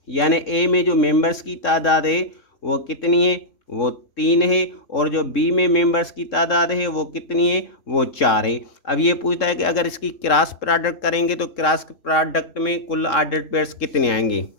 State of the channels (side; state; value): right; late; 3.7 ms